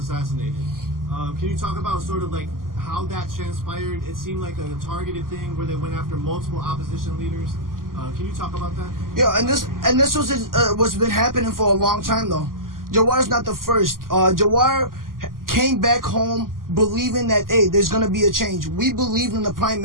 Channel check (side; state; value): left; late; 0.91 ms